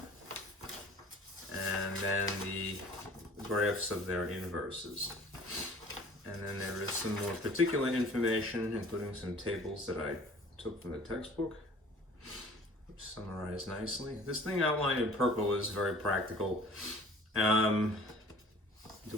And then the graphs of their inverses. And then there is some more particular information, including some tables that I took from the textbook, which summarize nicely. This thing outlined in purple is very practical. Do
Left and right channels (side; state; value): both; normal; correlation 0.49